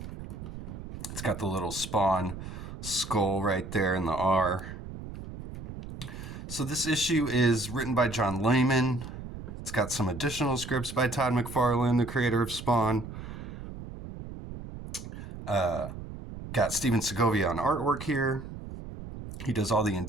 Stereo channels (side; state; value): right; noise; rumble, 10 dB below the sound